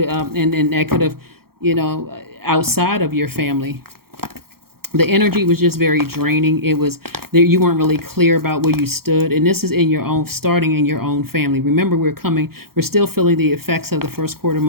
and that could have, outside of your family. The energy was just very draining. It was there, you weren't really clear about where you stood, and this is starting in your own family. Remember, we're still feeling the effects of the first quarter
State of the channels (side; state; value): left; late; 0.94 ms